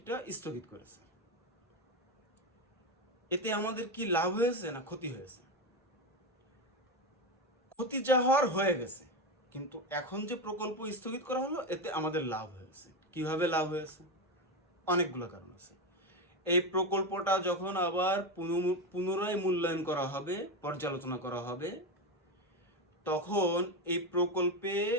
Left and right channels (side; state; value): both; normal; correlation 0.13